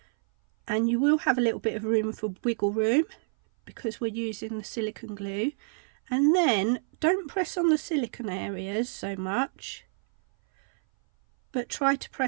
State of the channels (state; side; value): silent; left; 58 dB below the other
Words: and you will have a little bit of room for wiggle room because we're using the silicone glue. And then don't press on the silicone areas so much, but try to